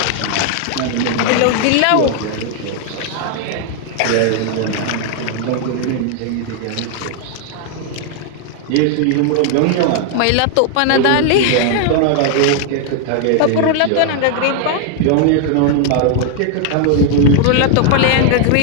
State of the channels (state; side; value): different; both; correlation 0.00